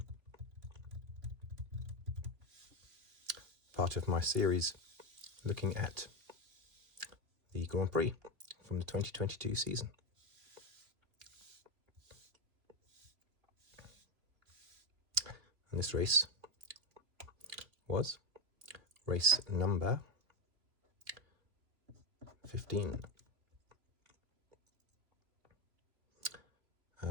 part of my series looking at the Grand Prix from the 2022 season. And this race was race number 15.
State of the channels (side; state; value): left; late; 2.8 ms